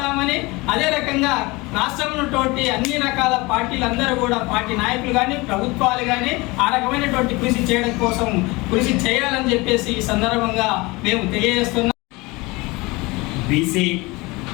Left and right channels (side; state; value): right; quieter; 23.6 dB